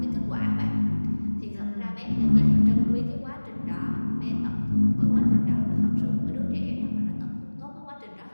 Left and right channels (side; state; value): both; inverted; correlation -1.00